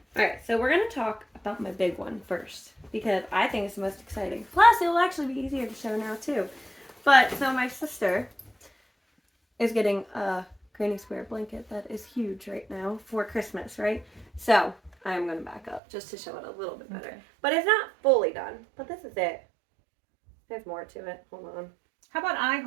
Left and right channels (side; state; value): left; drops out; at 15.8 s